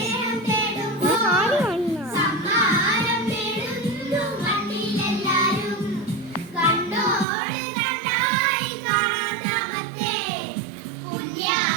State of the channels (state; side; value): drops out; left; at 7.2 s